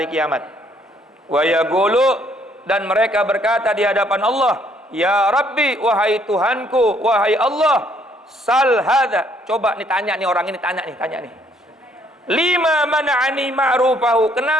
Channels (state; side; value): normal; both; correlation 0.66